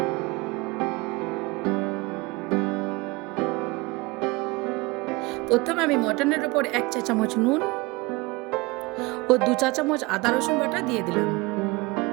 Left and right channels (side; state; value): left; quieter; 24.1 dB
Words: প্রথমে আমি মটনের ওপর 1 চা চামচ নুন ও 2 চা চামচ আদা রসুন বাটা দিয়ে দিলাম।